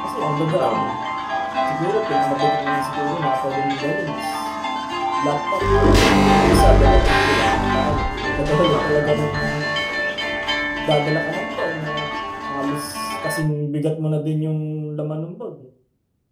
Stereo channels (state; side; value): identical; both; correlation 1.00